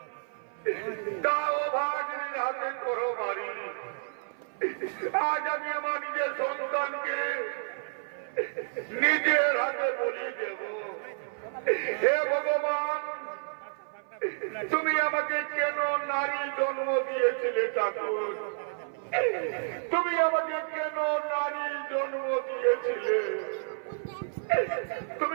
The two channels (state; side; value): silent; left; 56 dB below the other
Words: তাও ভাগ্নির হাতে করো মারি। আজ আমি আমার নিজের সন্তানকে নিজের হাতে বলি দেব। হে ভগবান, তুমি আমাকে কেন নারী জন্ম দিয়েছিলে ঠাকুর? তুমি আমাকে কেন নারী জন্ম দিয়েছিলে?